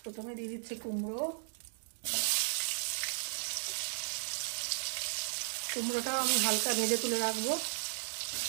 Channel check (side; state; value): left; silent; digital silence